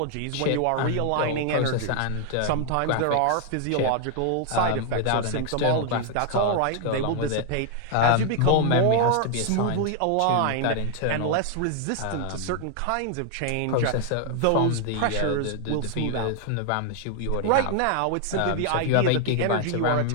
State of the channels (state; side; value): different; both; correlation 0.00